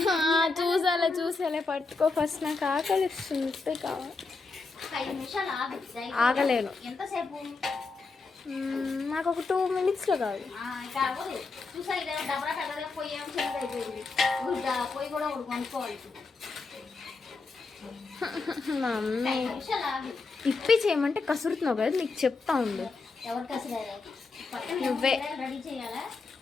చూసాలే పట్టుకో ఫస్ట్. నాకు ఆకలి ఇస్తుంది కావాలి. 5 నిమిషాలు ఆగు. ఆగలేను. ఎంతసేపు? నాకు ఒక 2 minutesలో కావాలి. ఇంకా అవ్వదు. చూసా ఇదే డబ్బా పెద్దగా పొయ్యి ఏమో చిన్నది అయిపోయింది. పొయ్యి కూడా ఒకటి కొనుక్కోవాలి. మమ్మీ 5 నిమిషాలు ఆగు. ఇప్పి చేయమంటే కసురుతున్నావు కదా, నీకు చెప్తా ఉండు. ఎవరు కసిరారు? పక్కన నువ్వే. రెడీ చేయాలా?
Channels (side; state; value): right; quieter; 4.1 dB